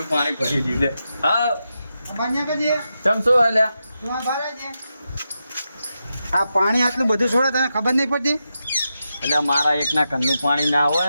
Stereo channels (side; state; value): both; inverted; correlation -0.88